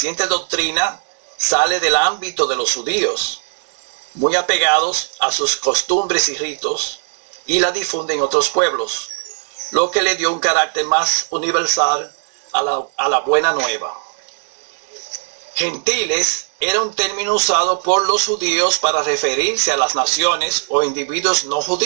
doctrina sale del ámbito de los judíos, muy apegados a sus costumbres y ritos, y la difunde en otros pueblos, lo que le dio un carácter más universal a la buena nueva. Gentiles era un término usado por los judíos para referirse a las naciones o individuos no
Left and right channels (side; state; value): left; silent; digital silence